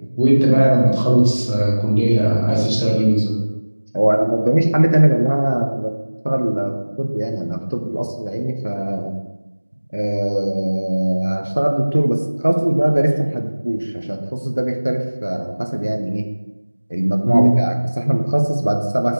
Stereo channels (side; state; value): both; inverted; correlation -1.00